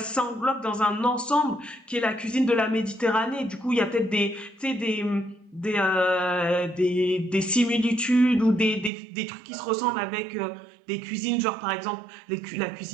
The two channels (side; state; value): left; drops out; at 8.9 s